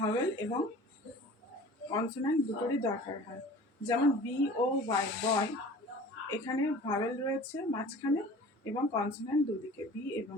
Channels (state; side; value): normal; both; correlation 0.43